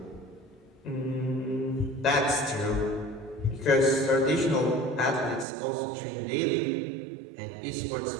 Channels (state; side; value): drops out; left; at 5.5 s